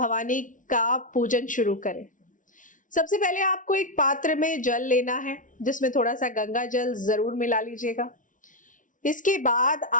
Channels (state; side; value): late; right; 0.38 ms